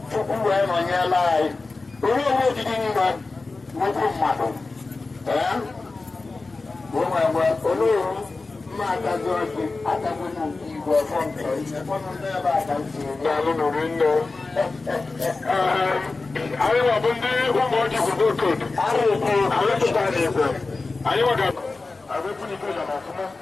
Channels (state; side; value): quieter; right; 3.7 dB